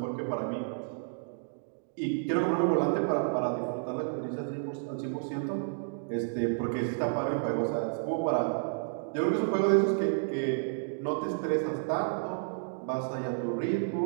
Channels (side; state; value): left; silent; digital silence